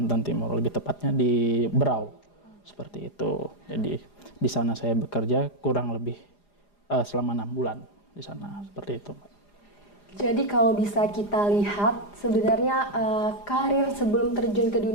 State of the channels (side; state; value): right; late; 4.9 ms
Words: Timur, lebih tepatnya di Berau, seperti itu. Jadi di sana saya bekerja kurang lebih selama 6 bulan di sana, seperti itu. Jadi kalau bisa kita lihat sebenarnya karir sebelum terjun ke